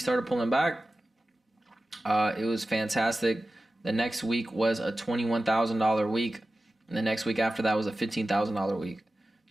pulling back. It was fantastic. The next week was a $21,000 week, and the next week after that was a $15,000 week.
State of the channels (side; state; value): both; normal; correlation 0.95